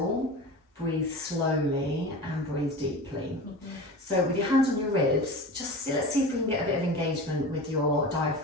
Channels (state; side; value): normal; both; correlation 0.32